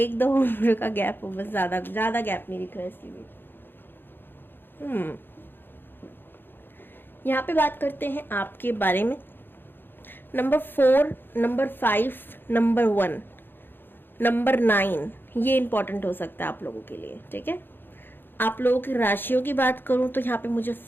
उम्र का गैप हो, बस ज़्यादा गैप नहीं दिख रहा है इसके बीच। यहाँ पे बात करते हैं आपके बारे में। नंबर 4, नंबर 5, नंबर 1, नंबर 9, ये इंपॉर्टेंट हो सकता है आप लोगों के लिए, ठीक है। आप लोगों की राशियों की बात करूं तो यहाँ पे मुझे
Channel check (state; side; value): late; right; 0.099 ms